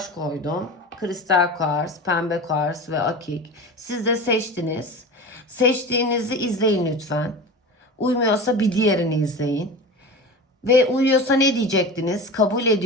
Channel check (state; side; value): normal; both; correlation 0.31